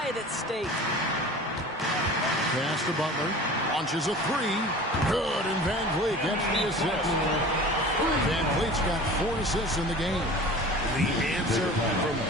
at stake. Pass to Butler. Launches a 3. Good, and Van Vliet gets the assist. Van Vliet's got 4 assists in the game. The answer from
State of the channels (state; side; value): normal; both; correlation 0.40